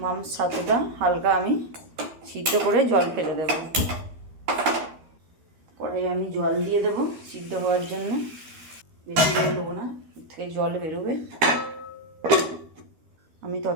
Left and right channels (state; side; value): late; left; 13 ms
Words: মাংস ছাতুটা হালকা আমি সিদ্ধ করে জল ফেলে দেব। কড়াই আমি জল দিয়ে দেব সিদ্ধ হওয়ার জন্য। বেশি জল দেবো না, এর থেকে জল বেরোবে। আমি